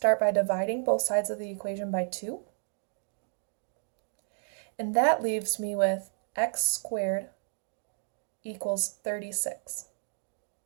by dividing both sides of the equation by 2. And that leaves me with x squared equals 36.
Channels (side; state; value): left; silent; digital silence